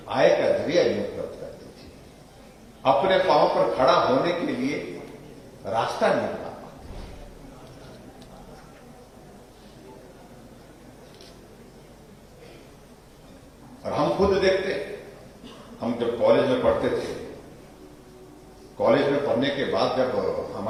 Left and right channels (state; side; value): identical; both; correlation 1.00